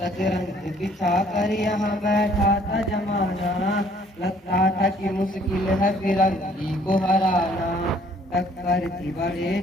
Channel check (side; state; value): both; normal; correlation 0.60